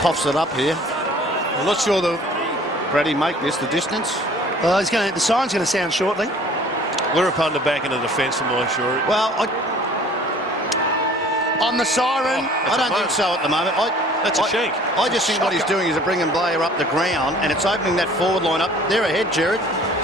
Coughs it up here. I'm not sure the Brady make this the distance. Well, the siren's going to sound shortly. Lurapunda back in the defence for my sure. Well, on the siren. I don't think so at the moment. That's a shank. I just think what he's doing is bringing Blair up the ground, and it's opening that forward line up. They're ahead, Gerard.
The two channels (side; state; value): both; normal; correlation 0.51